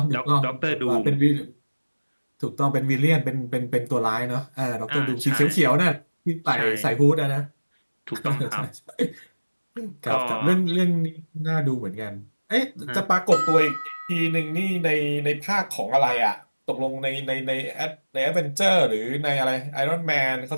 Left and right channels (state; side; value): inverted; both; correlation -1.00